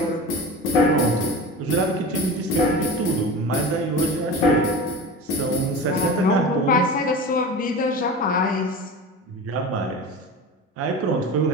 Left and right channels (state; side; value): normal; both; correlation 0.31